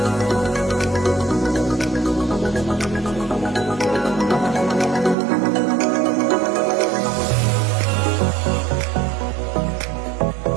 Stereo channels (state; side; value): drops out; left; at 5.2 s